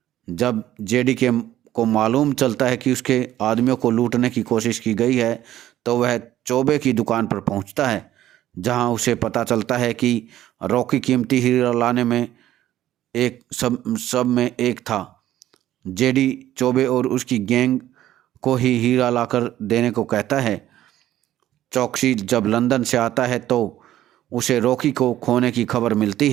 जब जेडी के को मालूम चलता है कि उसके आदमियों को लूटने की कोशिश की गई है, तो वह चौबे की दुकान पर पहुंचता है, जहां उसे पता चलता है कि रॉकी कीमती हीरा लाने में एक सब सब में एक था। जेडी चौबे और उसकी गैंग को ही हीरा लाकर देने को कहता है। चौकसी जब लंदन से आता है तो उसे रॉकी को खोने की खबर मिलती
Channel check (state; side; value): quieter; left; 13.1 dB